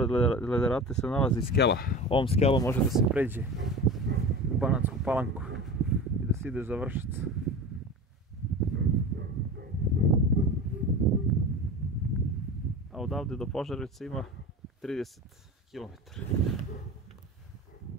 Lederate se nalazi skela. Ovom skelom može da se pređe u Banatsku Palanku i da se ide za Vršac. A odavde do Požarevca ima 30 km.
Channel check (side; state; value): both; normal; correlation 0.32